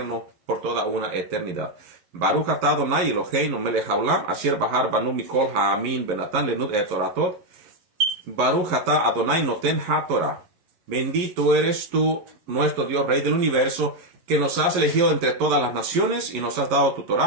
por toda una eternidad. Baruch atah Adonai Eloheinu melech haolam, asher bahar banu mikol ha'amin benatan lenud et toratot. Baruch atah Adonai noten haTorah. Bendito eres tú, nuestro Dios, Rey del universo, que nos has elegido entre todas las naciones y nos has dado tu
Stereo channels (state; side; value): late; left; 11 ms